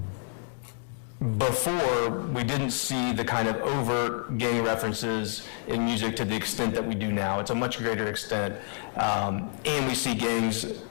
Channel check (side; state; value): right; silent; 59 dB below the other